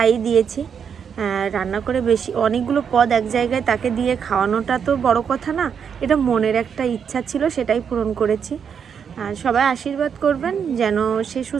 দিয়েছি। রান্না করে বেশি অনেকগুলো পদ এক জায়গায় তাকে দিয়ে খাওয়ানোটা তো বড় কথা না, এটা মনের একটা ইচ্ছা ছিল, সেটাই পূরণ করেছি। সবাই আশীর্বাদ করবেন যেন সে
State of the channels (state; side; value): quieter; left; 7.2 dB